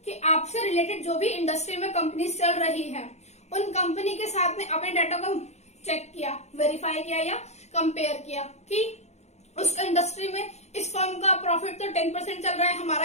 कि आपसे रिलेटेड जो भी इंडस्ट्री में कंपनी चल रही है उन कंपनी के साथ में अपने डाटा को चेक किया, वेरीफाई किया या कंपेयर किया कि उस इंडस्ट्री में इस फर्म का प्रॉफिट तो 10% चल रहा है,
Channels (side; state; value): right; late; 0.32 ms